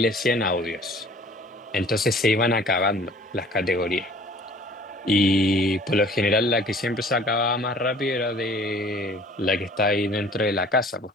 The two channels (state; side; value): normal; both; correlation 0.51